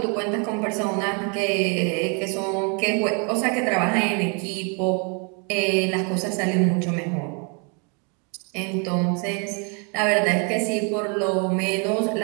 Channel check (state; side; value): quieter; left; 36.2 dB